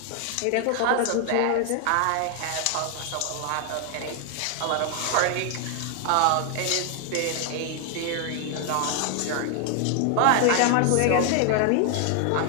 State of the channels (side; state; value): both; different; correlation 0.00